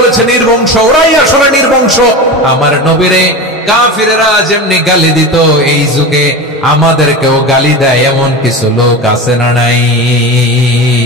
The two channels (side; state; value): both; normal; correlation 0.26